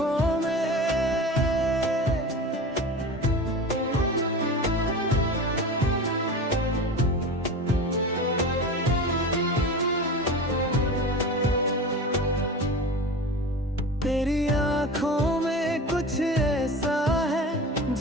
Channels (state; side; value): normal; both; correlation 0.31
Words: में तेरी आंखों में कुछ ऐसा है